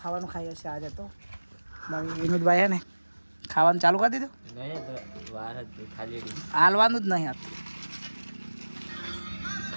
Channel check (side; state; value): both; inverted; correlation -1.00